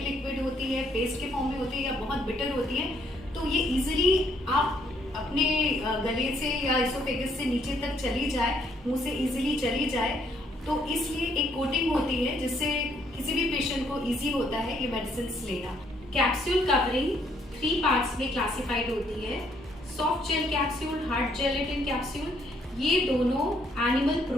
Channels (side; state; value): both; normal; correlation 0.69